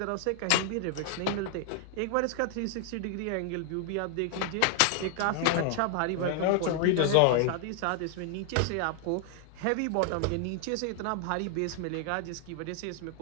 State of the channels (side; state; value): both; different; correlation 0.00